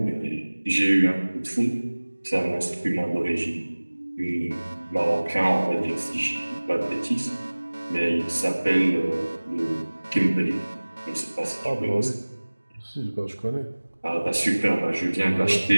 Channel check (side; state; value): both; inverted; correlation -1.00